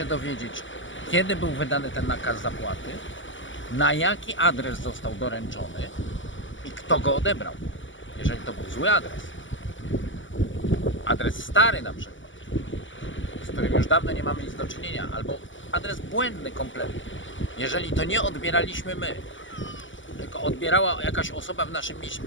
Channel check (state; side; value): late; right; 0.55 ms